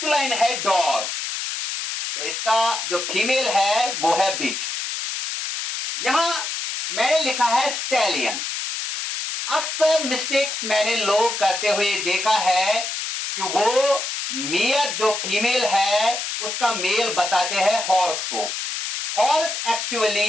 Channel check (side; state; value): left; noise; hiss, 4 dB below the sound